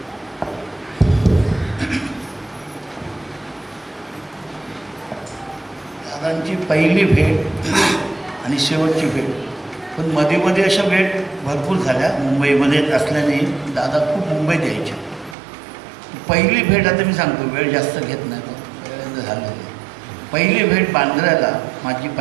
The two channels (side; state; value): left; drops out; at 15.4 s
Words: दादांची पहिली भेट आणि शेवटची भेट, पण मध्ये मध्ये अशा भेट भरपूर झाल्या. मुंबईमध्ये असल्याने दादा खूप मुंबईत यायचे. पहिली भेट आता मी सांगतो, वेळ जास्त घेत नाही, तो झालेली. पहिली भेट बांद्र्याला माझी